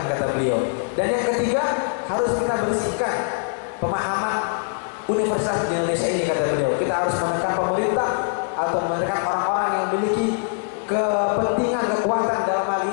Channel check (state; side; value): silent; right; digital silence